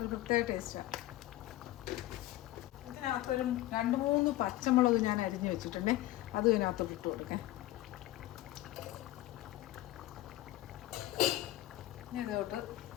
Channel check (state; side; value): quieter; right; 15.8 dB